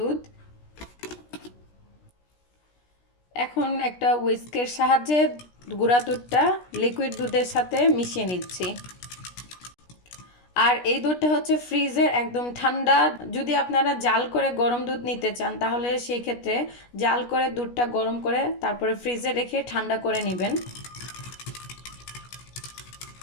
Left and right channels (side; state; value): right; late; 17 ms